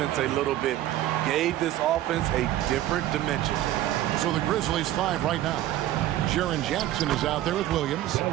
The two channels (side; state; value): left; quieter; 13.7 dB